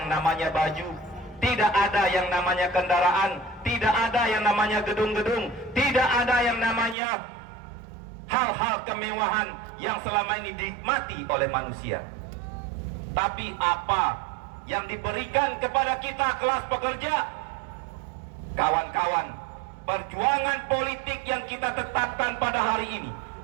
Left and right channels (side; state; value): left; drops out; at 7.0 s